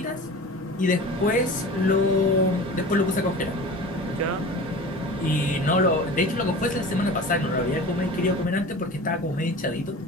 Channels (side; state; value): both; normal; correlation 0.36